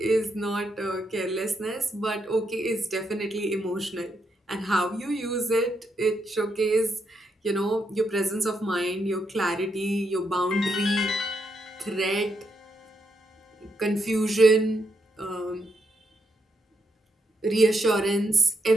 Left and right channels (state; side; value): normal; both; correlation 0.80